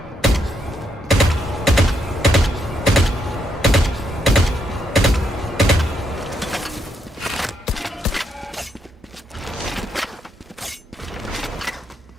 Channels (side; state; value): both; normal; correlation 0.78